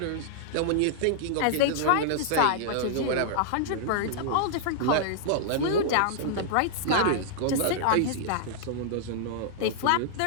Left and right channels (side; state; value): both; different; correlation -0.01